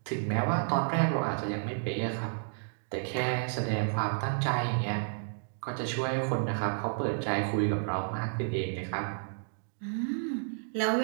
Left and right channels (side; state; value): left; silent; digital silence